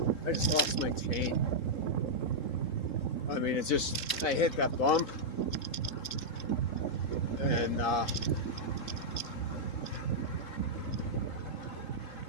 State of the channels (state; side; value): late; right; 3.7 ms